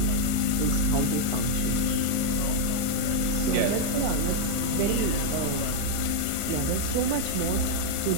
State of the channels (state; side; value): different; both; correlation 0.00